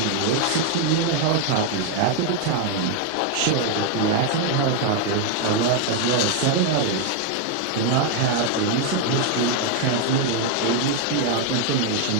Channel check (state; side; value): different; both; correlation 0.00